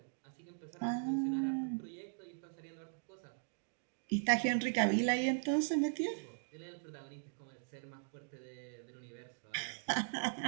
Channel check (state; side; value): silent; left; digital silence